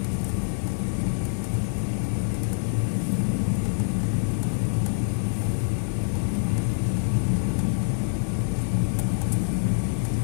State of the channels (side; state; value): right; silent; digital silence